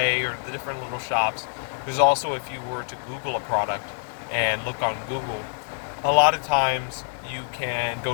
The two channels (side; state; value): right; silent; digital silence